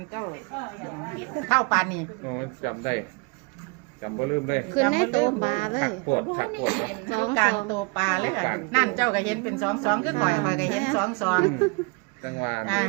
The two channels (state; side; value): quieter; left; 30.5 dB